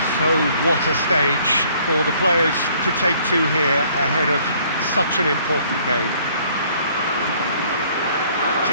So what a stage for the players to take to here ahead of such an important game.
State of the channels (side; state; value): both; inverted; correlation -0.60